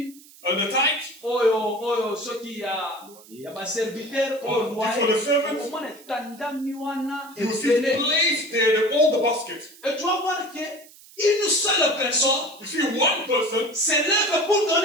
The tithe. Oyo soki ya baserviteur oyo For the servants. omona etandami wana You see ebele. placed there all the baskets. Et tu vas voir que une seule personne You see one person se lève pour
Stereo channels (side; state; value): right; noise; hiss, 23 dB below the sound